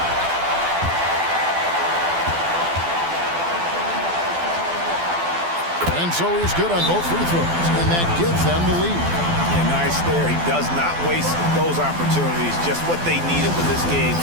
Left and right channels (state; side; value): late; left; 12 ms